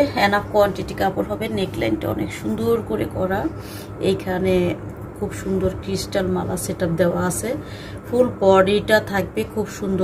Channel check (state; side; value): identical; both; correlation 1.00